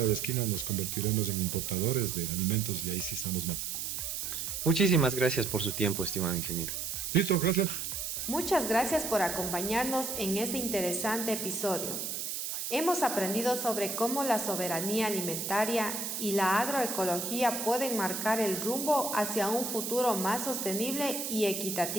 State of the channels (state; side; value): noise; right; hiss, 4 dB below the sound